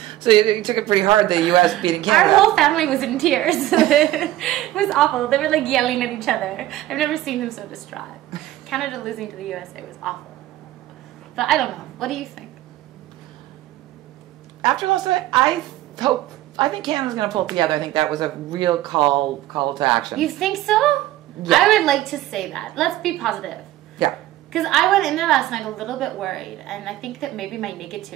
So you took it pretty hard, the U.S. beating Canada. Our whole family was in tears. It was awful. They were like yelling at each other. I've never seen them so distraught. Canada losing to the USA was awful. But I don't know. What do you think? After last night, I think Canada's going to pull it together. I think that was a real call to action. You think so? Yeah. I would like to say that. Let's be positive. Yeah. Because I went in there last night a little bit worried, and I think that maybe my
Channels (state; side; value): quieter; left; 14.7 dB